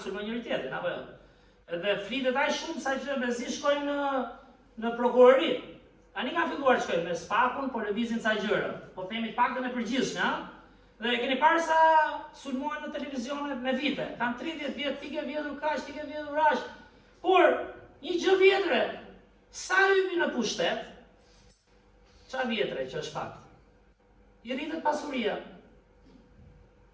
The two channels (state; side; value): identical; both; correlation 1.00